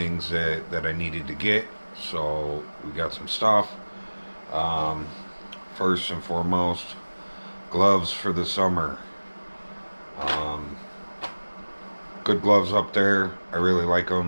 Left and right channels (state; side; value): inverted; both; correlation -1.00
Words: that I needed to get, so we got some stuff. First and foremost, gloves for the summer. Good gloves up there. I really like